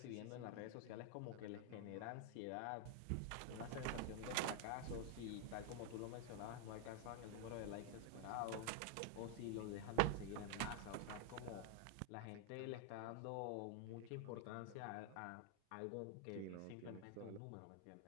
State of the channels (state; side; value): different; both; correlation 0.00